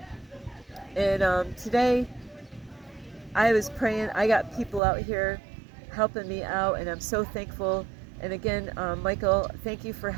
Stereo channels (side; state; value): left; drops out; at 4.8 s